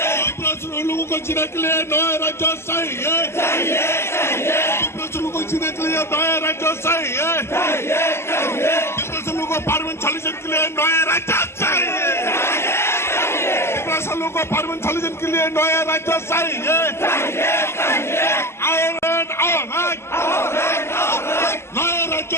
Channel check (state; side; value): late; right; 0.12 ms